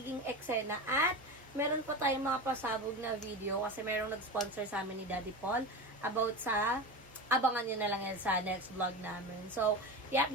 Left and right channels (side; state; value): both; normal; correlation 0.25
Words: eksena. At, meron pa tayong mga pasabog na video kasi merong nag-sponsor sa amin ni Daddy Paul about sa, abangan nyo na lang yan sa next vlog namin. So,